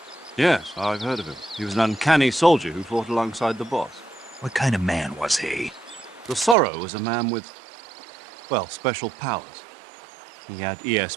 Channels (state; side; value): drops out; left; at 6.6 s